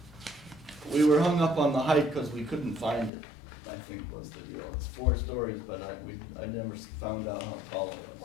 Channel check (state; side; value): drops out; right; at 3.1 s